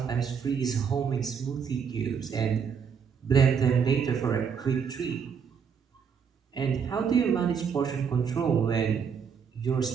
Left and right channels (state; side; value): quieter; left; 6.7 dB